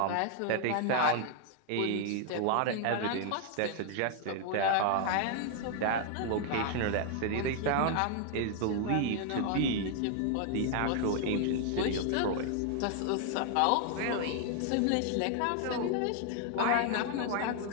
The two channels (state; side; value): different; both; correlation 0.00